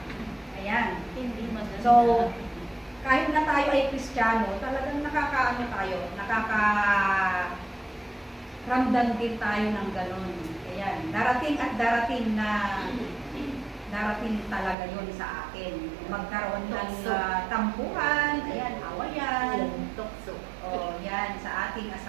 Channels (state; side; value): drops out; left; at 14.8 s